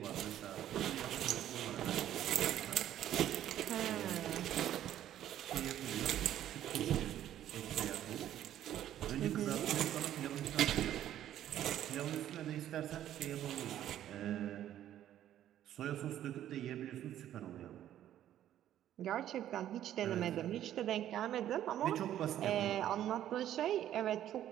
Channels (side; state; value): left; quieter; 11.7 dB